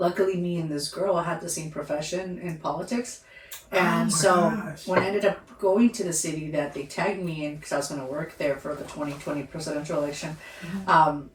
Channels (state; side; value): identical; both; correlation 1.00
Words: me and this girl had the same profession in politics. And when I ended up going to the city that they tagged me in, because I was going to work there for the 2020 presidential election, I